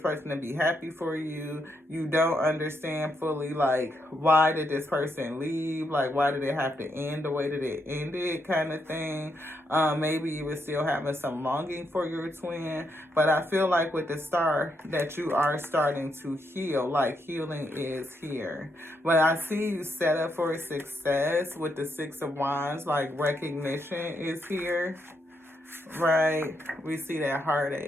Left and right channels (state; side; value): normal; both; correlation 0.79